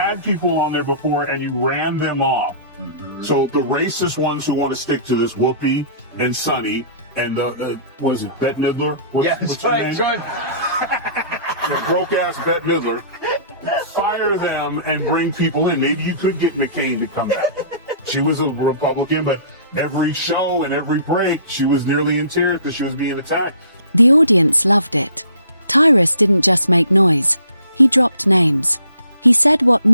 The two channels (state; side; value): inverted; both; correlation -0.51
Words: people on there before, and you ran them off. Mm-hmm. So the racist ones who want to stick to this, Whoopi and Sonny, and what is it, Bette Midler? What's right, good. Broke-ass Bette Midler. Fire them and bring people in. Maybe you could get McCain to come back. She was a Republican, but every show and every break, she was nearly in tears because she was being attacked. The audience loved it. Tyrus didn't just make noise. He dropped names. He said what